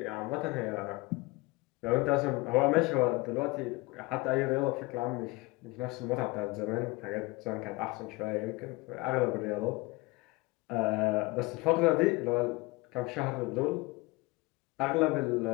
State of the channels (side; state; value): right; quieter; 23.3 dB